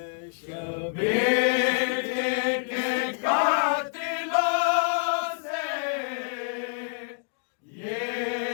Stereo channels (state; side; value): silent; right; digital silence